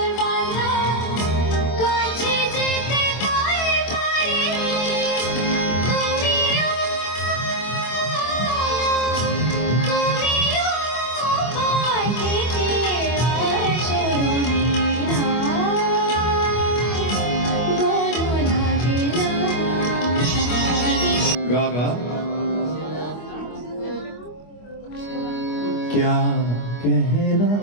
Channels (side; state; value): right; late; 25 ms